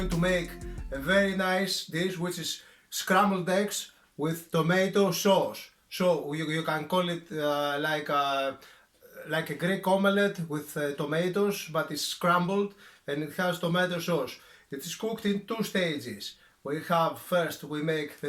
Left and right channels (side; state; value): both; identical; correlation 1.00